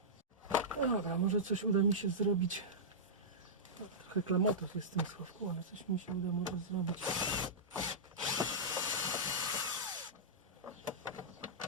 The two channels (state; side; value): normal; both; correlation -0.13